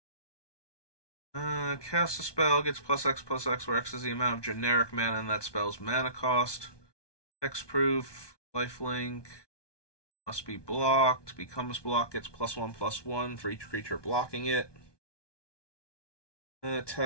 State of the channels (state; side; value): late; right; 1.2 ms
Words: Cast a spell, gets +X/+X, where X is the amount of generic mana in that spell's mana cost. Hexproof. Lifelink. Must be blocked. Becomes blocked. Gets +1/+1 for each creature blocking it.